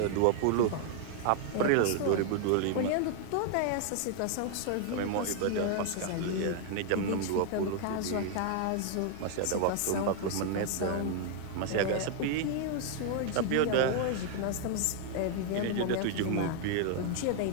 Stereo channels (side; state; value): both; different; correlation 0.00